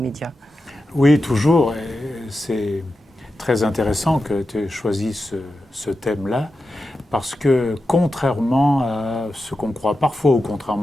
? Oui, toujours. Et c'est très intéressant que tu aies choisi ce thème-là, parce que contrairement à ce qu'on croit parfois ou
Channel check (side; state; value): both; normal; correlation 0.91